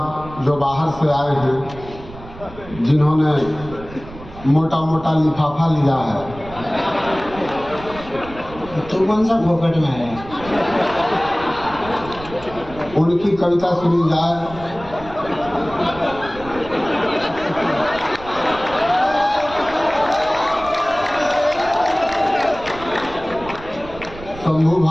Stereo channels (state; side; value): noise; right; rumble, 16 dB below the sound